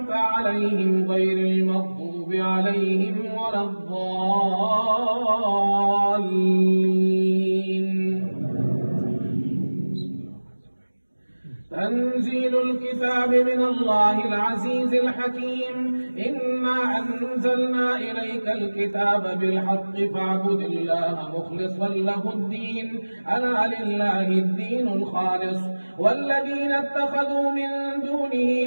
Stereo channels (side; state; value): both; inverted; correlation -1.00